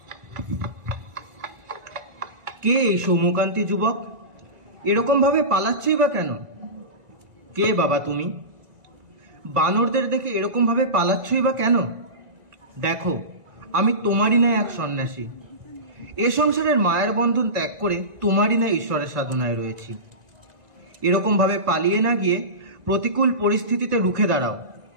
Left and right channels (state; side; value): late; left; 2.0 ms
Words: কে এই সৌম্যকান্তি যুবক? এরকম ভাবে পালাচ্ছই বা কেন? কে বাবা তুমি? বানরদের দেখে এরকম ভাবে পালাচ্ছই বা কেন? দেখো, আমি তোমারই না এক সন্ন্যাসী। এ সংসারের মায়ের বন্ধন ত্যাগ করে তোমারই না ঈশ্বরের সাধনায় রয়েছি। এরকম ভাবে পালিয়ে না গিয়ে প্রতিকূল পরিস্থিতিতে রুখে দাঁড়াও,